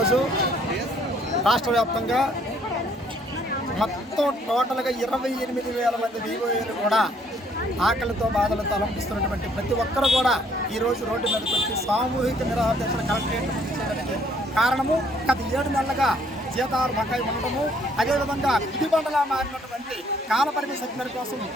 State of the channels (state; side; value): normal; both; correlation 0.64